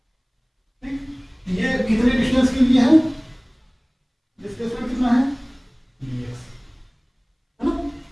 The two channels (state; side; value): identical; both; correlation 1.00